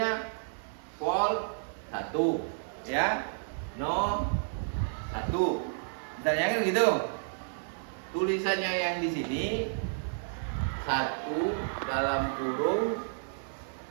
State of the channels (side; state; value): left; silent; digital silence